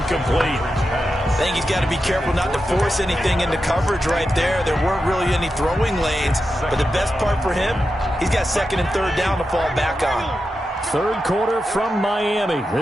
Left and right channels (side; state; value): both; normal; correlation 0.89